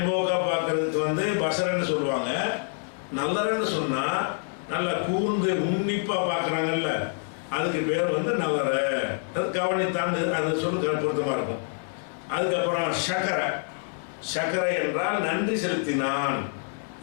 பார்க்கறதுக்கு வந்து பசரன்னு சொல்லுவாங்க. நல்லறன்னு சொன்னா நல்லா கூர்ந்து உன்னிப்பா பார்க்கறாங்கல்ல, அதுக்கு பேர் வந்து நல்லற. அது கவனித்தாண்டு அது சொல்லு பொருத்தமா இருக்கும். அதுக்கப்புறம் சக்கரை. சக்கரை என்றால் நன்றி செலுத்தினான்.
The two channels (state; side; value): silent; right; 56 dB below the other